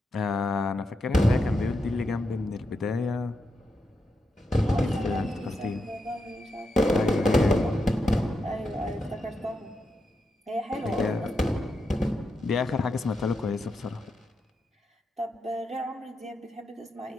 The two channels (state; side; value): normal; both; correlation 0.86